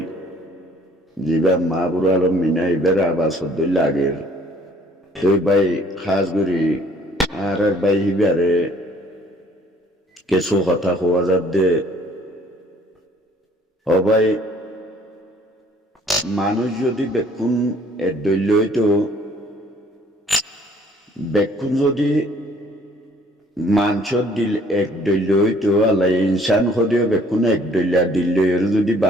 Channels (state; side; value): normal; both; correlation 0.58